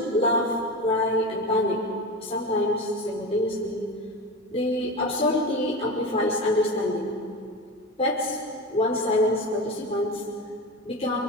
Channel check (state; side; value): normal; both; correlation 0.25